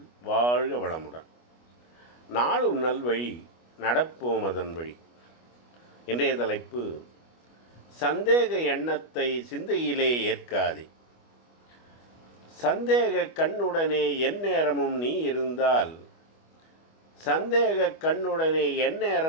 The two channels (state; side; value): late; right; 25 ms